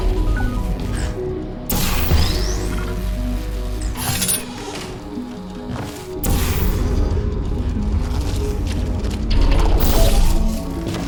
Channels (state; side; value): identical; both; correlation 1.00